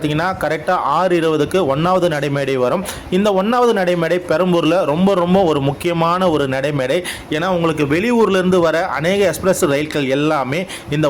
கரெக்டாக 6:20க்கு 1வது நடைமேடை வரும். இந்த 1வது நடைமேடை பெரம்பூரில் ரொம்ப ஒரு முக்கியமான ஒரு நடைமேடை. ஏன்னா உங்களுக்கு வெளியூர்ல இருந்து வர அநேக எக்ஸ்பிரஸ் ரயில்கள் எல்லாமே இந்த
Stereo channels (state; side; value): identical; both; correlation 1.00